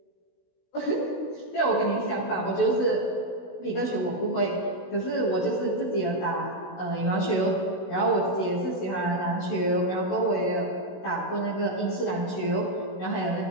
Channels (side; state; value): right; late; 16 ms